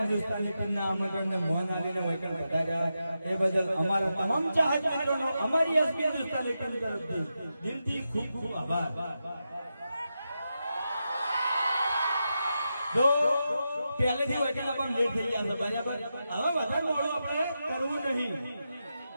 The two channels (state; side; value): inverted; both; correlation -0.88